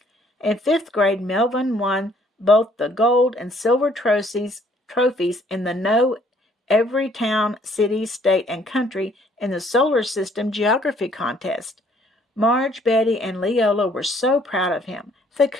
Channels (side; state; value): both; normal; correlation 0.63